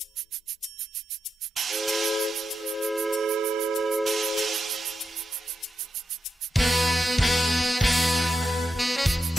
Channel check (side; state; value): both; normal; correlation 0.86